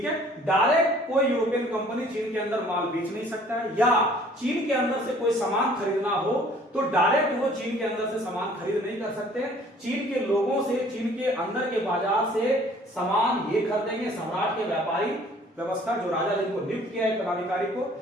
है, डायरेक्ट कोई यूरोपियन कंपनी चीन के अंदर माल बेच नहीं सकता है, या चीन के अंदर से कोई सामान खरीदना हो तो डायरेक्ट वो चीन के अंदर से सामान खरीद नहीं कर सकते। चीन के लोगों से, चीन के अंदर के बाजार से सामान ये खरीदेंगे सम्राट के व्यापारी व्यवस्था, जो राजा जिनको नियुक्त किया है पदाधिकारी को,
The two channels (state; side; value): normal; both; correlation 0.55